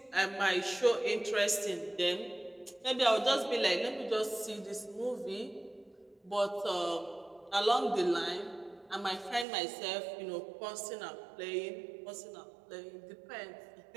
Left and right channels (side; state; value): left; drops out; at 9.5 s